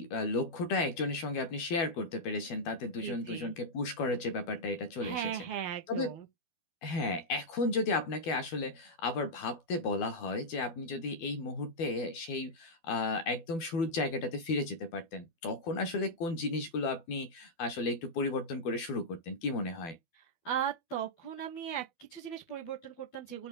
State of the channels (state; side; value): late; right; 12 ms